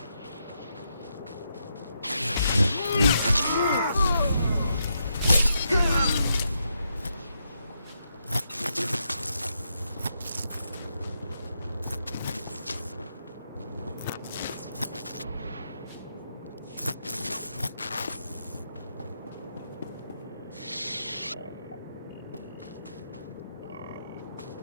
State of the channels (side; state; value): both; inverted; correlation -0.82